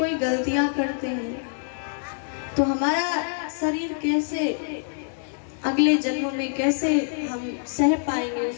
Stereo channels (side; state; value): right; silent; 61 dB below the other